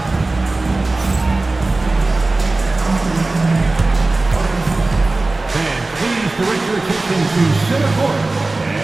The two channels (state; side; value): quieter; left; 3.2 dB